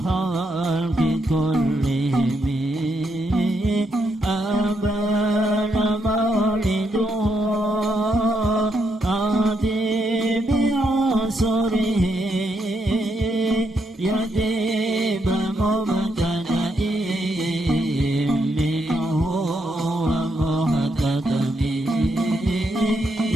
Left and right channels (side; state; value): both; normal; correlation 0.79